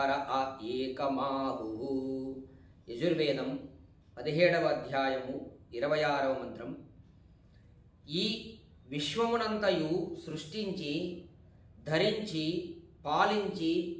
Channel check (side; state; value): both; identical; correlation 1.00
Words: ఏకమాహు. యజుర్వేదం 17వ అధ్యాయము 26వ మంత్రం. ఈ విశ్వమునంతయు సృష్టించి ధరించి పాలించి